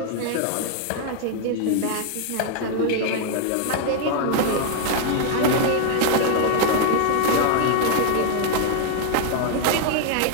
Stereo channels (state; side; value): different; both; correlation 0.00